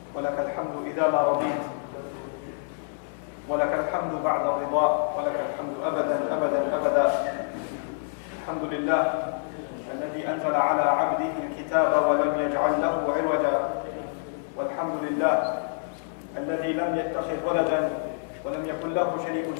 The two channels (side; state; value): right; silent; digital silence